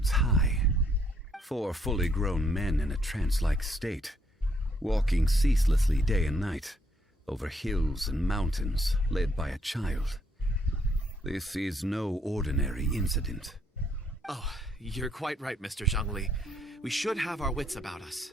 high. 4 fully grown men in a trance-like state, walking ceaselessly day and night, over hills and mountains, led by a child. This is no ordinary incident. Oh, you're quite right, Mr. Zhongli. We should have our wits about us.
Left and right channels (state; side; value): normal; both; correlation 0.70